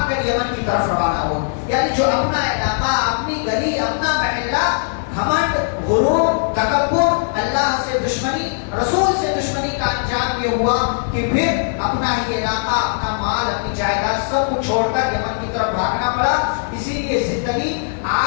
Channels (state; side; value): silent; right; digital silence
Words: کر یمن کی طرف روانہ ہوا. یعنی جو اپنا علاقہ, اپنی گلی, اپنا محلہ, گھمنڈ, غرور, تکبر, اللہ سے دشمنی, رسول سے دشمنی کا انجام یہ ہوا کہ پھر اپنا ہی علاقہ, اپنا مال, اپنی جائیداد سب کچھ چھوڑ کر یمن کی طرف بھاگنا پڑا. اسی لیے زندگی